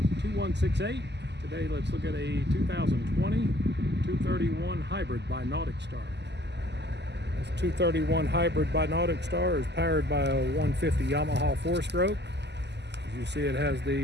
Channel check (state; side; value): late; left; 0.50 ms